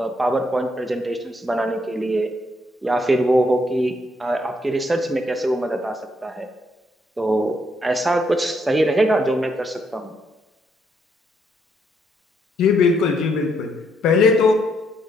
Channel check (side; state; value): both; normal; correlation 0.74